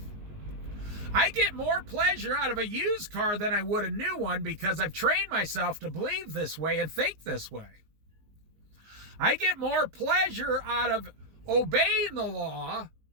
I get more pleasure out of a used car than I would a new one because I've trained myself to believe this way and think this way. I get more pleasure out of obeying the law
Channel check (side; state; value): left; late; 19 ms